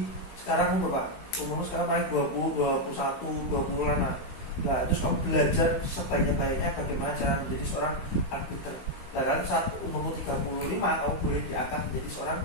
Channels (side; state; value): right; late; 16 ms